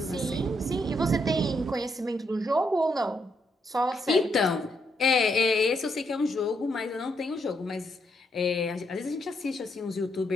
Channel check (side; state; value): both; normal; correlation 0.77